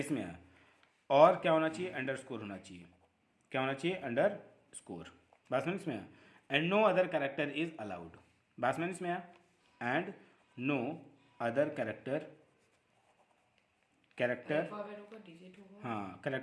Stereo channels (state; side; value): identical; both; correlation 1.00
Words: आया, और क्या होना चाहिए, अंडरस्कोर होना चाहिए, क्या होना चाहिए, अंडरस्कोर, बात समझ में आया। And no other character is allowed, बात समझ में आया, एंड नो अदर कैरेक्टर हाँ,